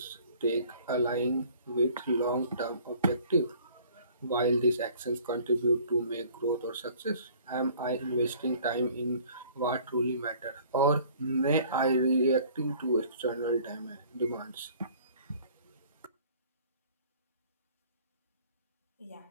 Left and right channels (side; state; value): both; inverted; correlation -0.53